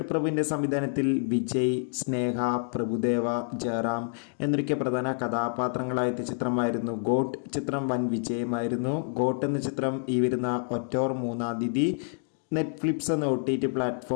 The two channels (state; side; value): silent; right; digital silence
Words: പ്രഭുവിൻ്റെ സംവിധാനത്തിൽ വിജയ്, സ്നേഹ, പ്രഭുദേവ, ജയറാം എന്നൊക്കെ പ്രധാന കഥാപാത്രങ്ങളായ ചിത്രമായിരുന്നു ഗോട്ട്. ചിത്രം വൻ വിജയമായിരുന്നു. ഗോട്ട് എന്ന ചിത്രം ഈ വരുന്ന ഒക്ടോബർ 3-ാം തീയതി നെറ്റ്ഫ്ലിക്സ് എന്ന OTT